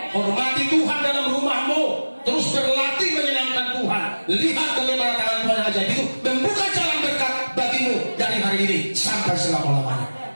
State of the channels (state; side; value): inverted; both; correlation -1.00